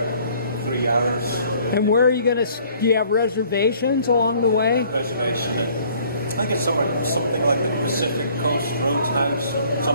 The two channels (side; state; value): both; inverted; correlation -0.57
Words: 3 hours. And where are you going to? Do you have reservations along the way? Reservation at, I think it's something like the Pacific Coast Roadhouse or